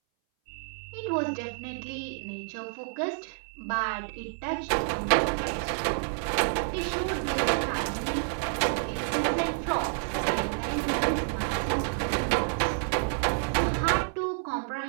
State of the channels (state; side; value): silent; left; 58 dB below the other